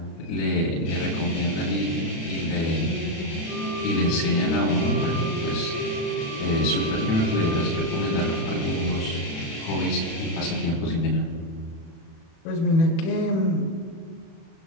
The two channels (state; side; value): late; right; 36 ms